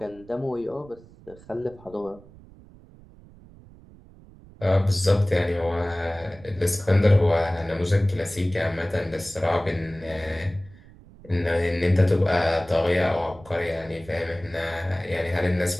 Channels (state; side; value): noise; right; rumble, 22 dB below the sound